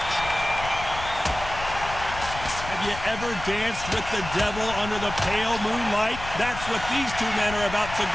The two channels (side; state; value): left; noise; rumble, 11 dB below the sound